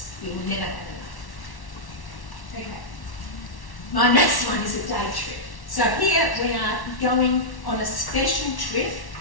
We will never have enough. Okay. My next one is a day trip. So here we are going on a special trip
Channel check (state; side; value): late; right; 1.1 ms